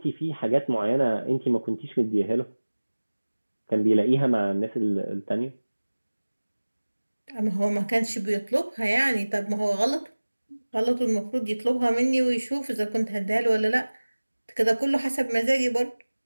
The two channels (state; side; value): inverted; both; correlation -1.00